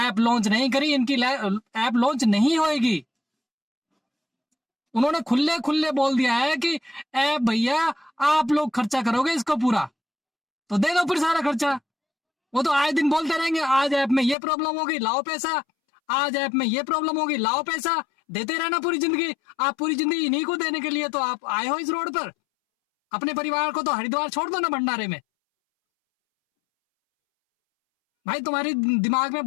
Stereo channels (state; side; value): drops out; right; at 14.4 s